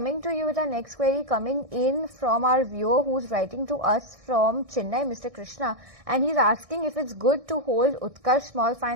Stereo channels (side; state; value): left; late; 1.6 ms